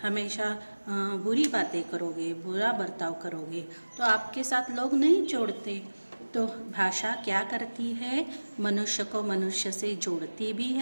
हमेशा बुरी बातें करोगे, बुरा बर्ताव करोगे, तो आपके साथ लोग नहीं जोड़ते। तो भाषा क्या करती है? मनुष्य को मनुष्य से जोड़ती भी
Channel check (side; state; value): both; inverted; correlation -1.00